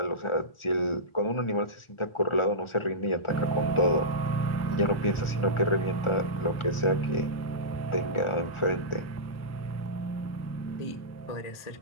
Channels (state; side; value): late; right; 1.4 ms